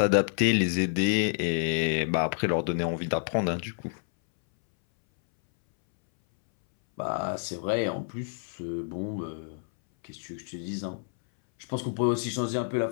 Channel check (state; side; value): silent; right; 59 dB below the other